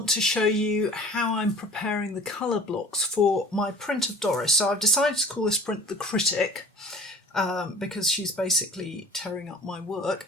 to show you how I'm preparing the colour blocks for my print of Doris. So I've decided to call this print the Critic because she's basically tearing up my work.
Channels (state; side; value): normal; both; correlation 0.44